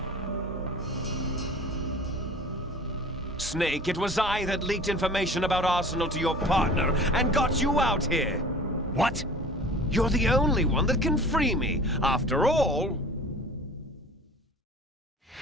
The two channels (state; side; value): normal; both; correlation 0.42